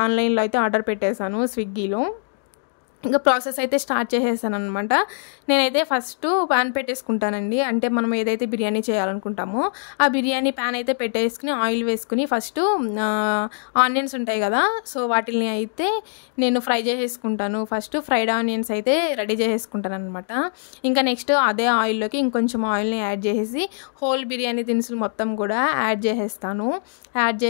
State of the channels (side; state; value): right; silent; digital silence